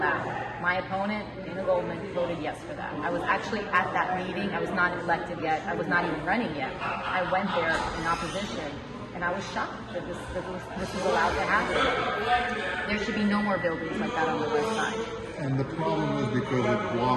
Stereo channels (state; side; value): identical; both; correlation 1.00